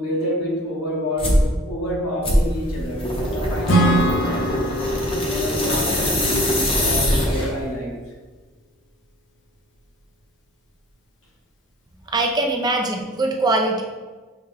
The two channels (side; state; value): both; normal; correlation 0.48